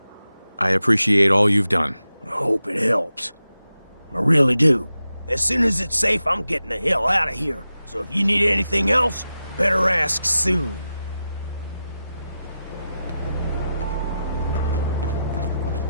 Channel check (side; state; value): both; inverted; correlation -0.91